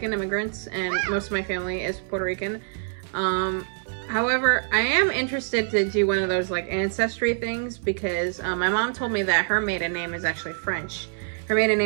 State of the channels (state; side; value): silent; left; 60 dB below the other